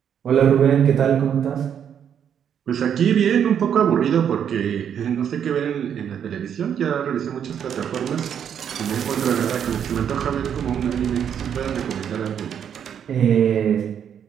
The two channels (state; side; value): quieter; left; 8.5 dB